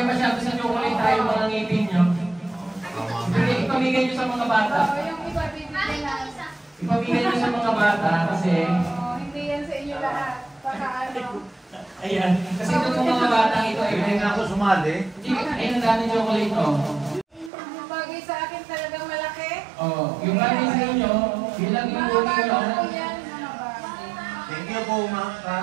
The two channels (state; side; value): drops out; left; at 17.5 s